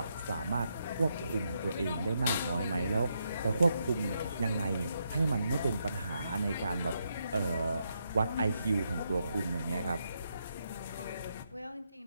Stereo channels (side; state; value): both; inverted; correlation -0.80